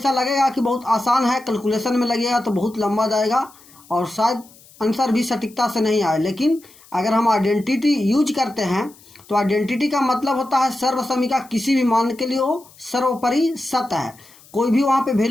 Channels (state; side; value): noise; left; hiss, 25 dB below the sound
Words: लगेगा कि बहुत आसान है, कैलकुलेशन में लगेगा तो बहुत लंबा जाएगा और शायद आंसर भी सटीकता से नहीं आए। लेकिन अगर हम आइडेंटिटी यूज करते हैं तो आइडेंटिटी का मतलब होता है सर्वसमीका किसी भी मान के लिए हो सर्वोपरि सत्य है। कोई भी वहाँ पे